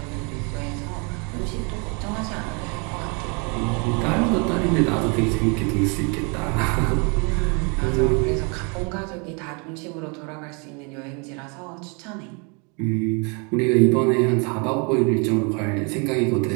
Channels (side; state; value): left; quieter; 33.5 dB